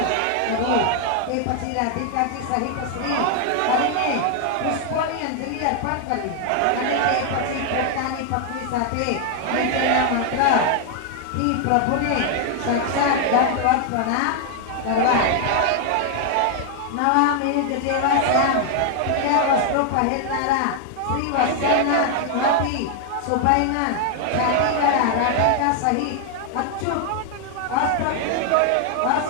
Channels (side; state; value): both; different; correlation 0.00